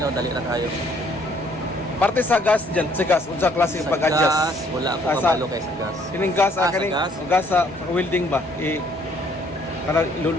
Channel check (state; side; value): normal; both; correlation 0.63